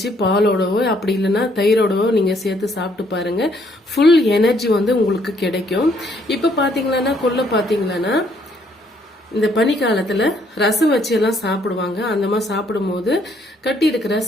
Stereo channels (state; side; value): normal; both; correlation 0.68